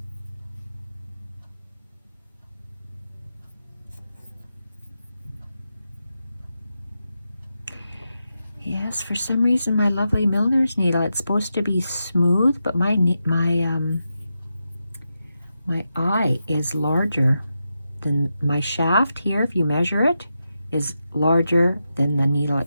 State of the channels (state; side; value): inverted; both; correlation -0.88